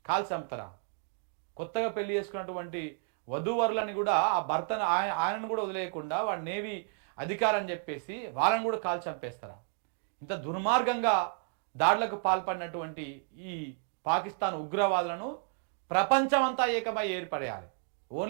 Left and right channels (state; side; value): silent; left; 57 dB below the other